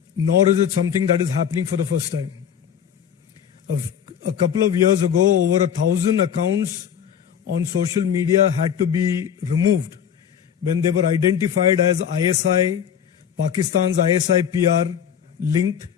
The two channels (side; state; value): right; quieter; 8.6 dB